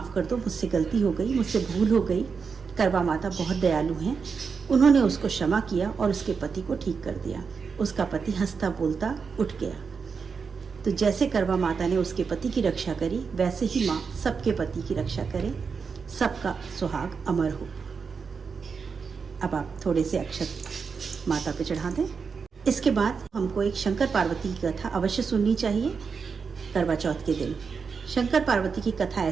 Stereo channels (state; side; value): quieter; left; 5.5 dB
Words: कर दो, मुझसे गलती हो गई, मुझसे भूल हो गई। करवा माता बहुत दयालु हैं। उन्होंने उसको क्षमा किया और उसके पति को ठीक कर दिया। उसका पति हंसता बोलता उठ गया। तो जैसे करवा माता ने उसके पति की रक्षा करी, वैसे ही माँ सबके पति की रक्षा करे, सबका सुहाग अमर हो। अब आप थोड़े से अक्षत माता पे चढ़ा दें। इसके बाद हमको एक शंकर पार्वती की कथा अवश्य सुननी चाहिए करवा चौथ के दिन। शंकर पार्वती की कथा